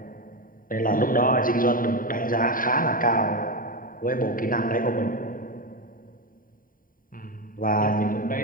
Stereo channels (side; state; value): right; late; 0.41 ms